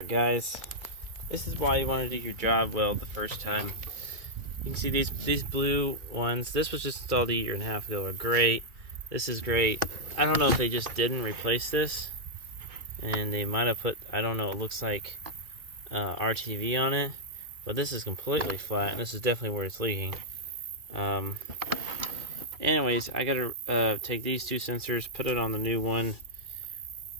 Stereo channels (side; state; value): left; late; 2.3 ms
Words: Guys, this is why you want to do your job well the first time. You can see these blue ones. This was just installed a year and a half ago. Are great. This is great. I don't know if they just didn't replace this, and they might have put, I don't know, it looks like RTV on it, but this is completely flat, and this is definitely where it's leaking. Anyways, I gotta take these two sensors, put it on the new one,